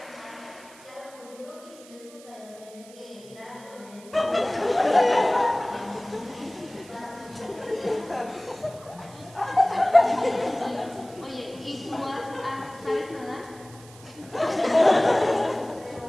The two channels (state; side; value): noise; right; hiss, 22 dB below the sound